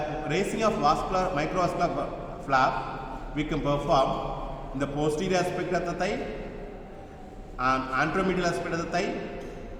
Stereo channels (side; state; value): both; identical; correlation 1.00